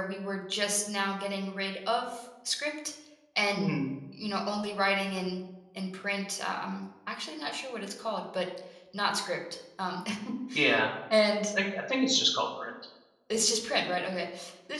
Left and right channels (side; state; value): both; identical; correlation 1.00